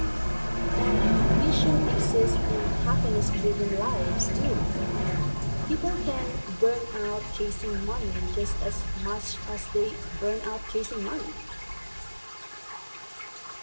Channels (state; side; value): inverted; both; correlation -1.00